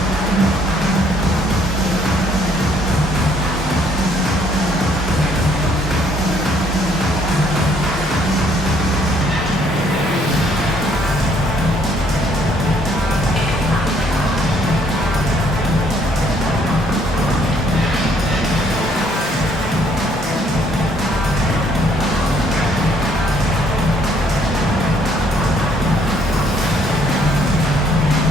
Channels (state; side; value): normal; both; correlation 0.65